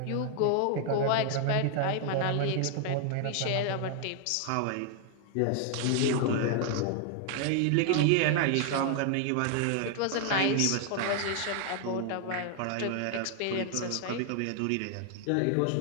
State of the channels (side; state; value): both; different; correlation 0.00